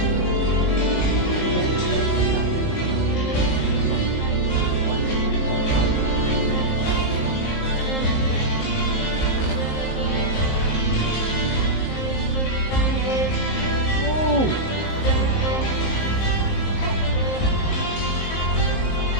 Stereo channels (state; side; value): late; right; 19 ms